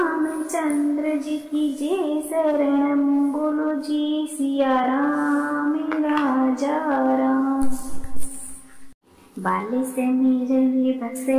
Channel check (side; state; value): both; identical; correlation 1.00